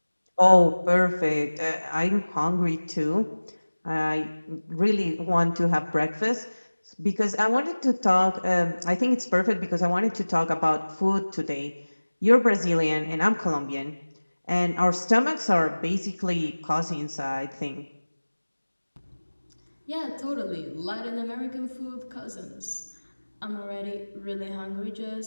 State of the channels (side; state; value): both; inverted; correlation -1.00